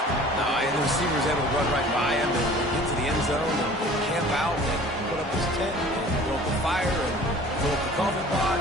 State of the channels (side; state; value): both; normal; correlation 0.47